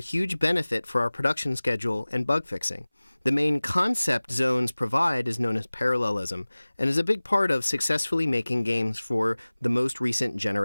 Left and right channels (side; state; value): both; inverted; correlation -1.00